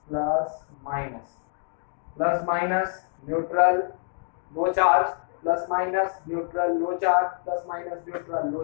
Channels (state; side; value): silent; right; 61 dB below the other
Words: plus minus, plus minus neutral, no charge, plus minus neutral, no charge, plus minus neutral, no